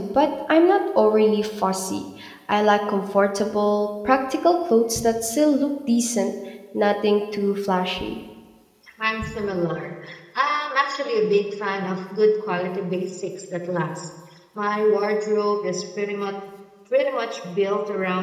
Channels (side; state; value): both; identical; correlation 1.00